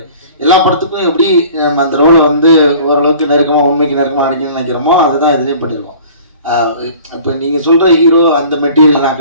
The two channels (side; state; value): both; inverted; correlation -0.47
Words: எல்லா படத்துக்கும் எப்படி அந்த ரோலை வந்து ஓரளவுக்கு நெருக்கமா உண்மைக்கு நெருக்கமா நடிக்கணும்னு நினைக்கிறோமோ அதுதான் இதுலயும் பண்ணிருக்கோம். இப்ப நீங்க சொல்ற ஹீரோ அந்த மெட்டீரியல் நான்